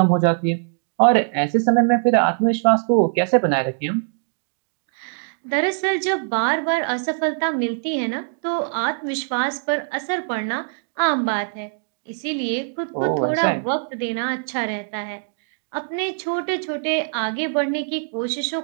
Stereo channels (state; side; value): silent; left; 64 dB below the other